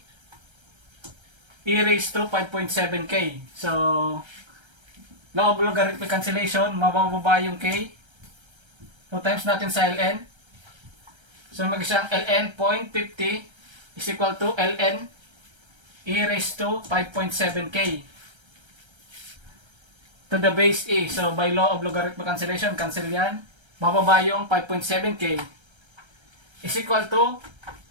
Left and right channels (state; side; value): late; left; 1.3 ms